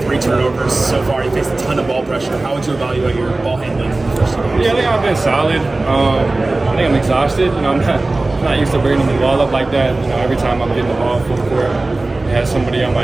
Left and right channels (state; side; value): quieter; left; 3.1 dB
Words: turnovers so far. You faced a ton of ball pressure. How would you evaluate your ball handling in the first 2 games? Yeah, I think I've been solid. I think I'm exhausted. I'm not used to bringing the ball up like that. Every time I'm getting the ball full court, it has somebody on